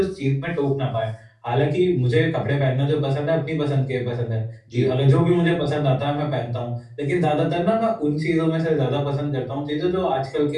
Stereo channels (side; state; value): both; identical; correlation 1.00